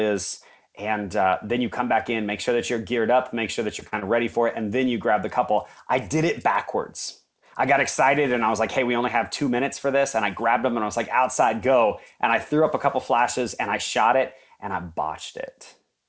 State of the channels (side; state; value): both; identical; correlation 1.00